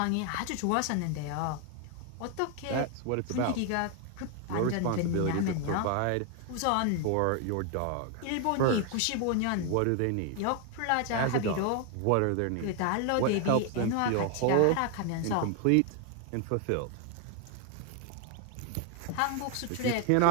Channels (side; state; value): both; different; correlation 0.01